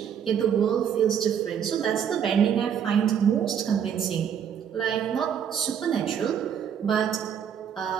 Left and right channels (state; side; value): quieter; left; 8.3 dB